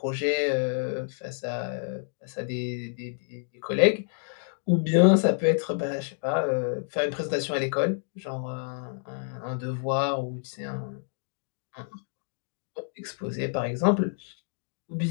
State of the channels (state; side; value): silent; right; digital silence